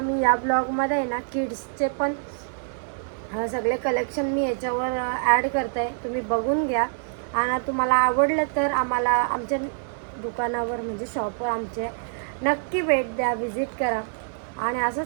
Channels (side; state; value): left; silent; 56 dB below the other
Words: मी या ब्लॉगमध्ये आहे ना किड्सचे पण सगळे कलेक्शन मी याच्यावर ॲड करते आहे. तुम्ही बघून घ्या. आणि तुम्हाला आवडलं तर आम्हाला आमच्या दुकानावर म्हणजे शॉपवर आमचे नक्की भेट द्या, विजिट करा आणि